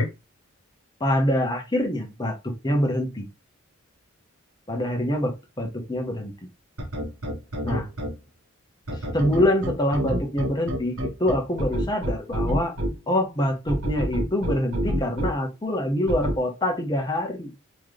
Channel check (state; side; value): normal; both; correlation 0.64